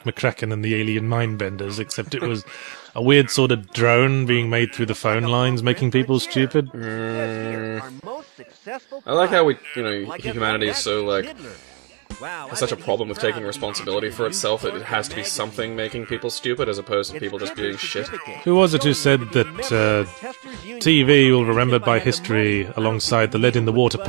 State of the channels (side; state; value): left; quieter; 36.1 dB